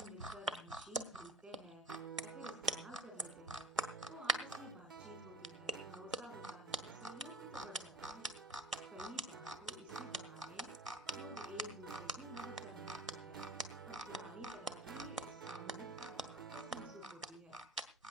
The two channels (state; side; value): normal; both; correlation 0.42